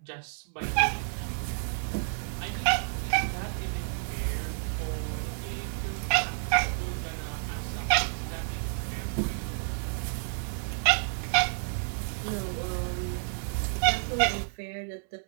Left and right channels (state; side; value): silent; left; 58 dB below the other